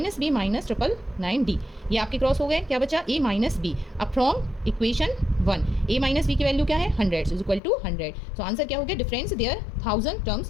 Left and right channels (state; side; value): drops out; right; at 7.6 s